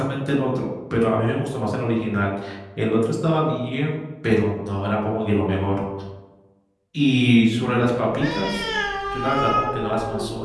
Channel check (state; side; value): identical; both; correlation 1.00